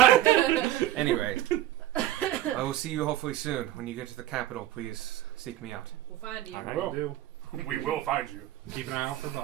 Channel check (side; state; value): left; quieter; 13.9 dB